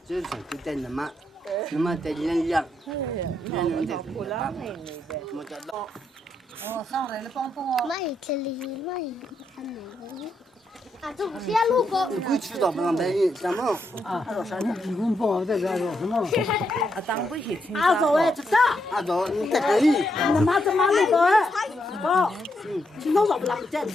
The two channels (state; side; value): normal; both; correlation 0.80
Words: 就是就在那么在人样，人的。我知道。哦，上来了，帮我。没这里没看哪个？啊，这不是路过。你不知道不让白人怎么？啊，啥呢？你公婆在这说什么？啊，当不起听。阿走哎，这个。阿走，你在这里。你妈怎么那个哎？不，今天早不拉不见